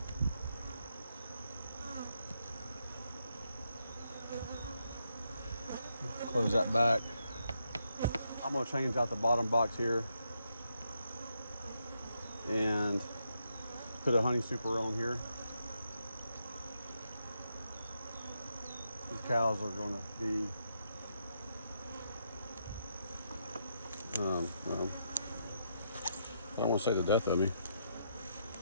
Close that back. I'm going to change out the bottom box here and put a honey super on here. These cows are going to be I don't want to say the death of me. It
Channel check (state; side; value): inverted; both; correlation -0.79